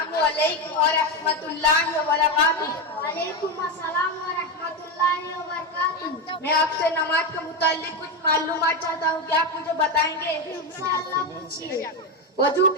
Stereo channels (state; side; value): normal; both; correlation 0.12